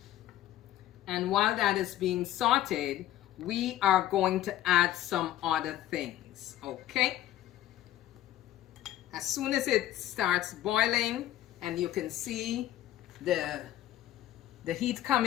And while that is being sauteed, we are going to add some other things, okay? As soon as it starts boiling and you can see the heat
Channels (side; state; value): right; quieter; 13.4 dB